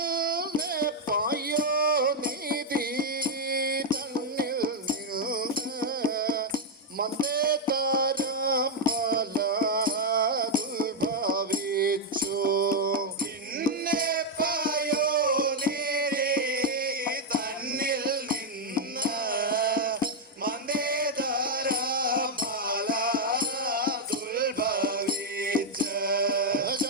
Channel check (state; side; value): normal; both; correlation 0.00